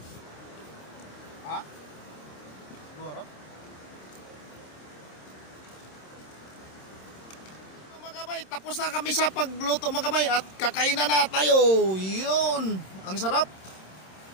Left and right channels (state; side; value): late; right; 26 ms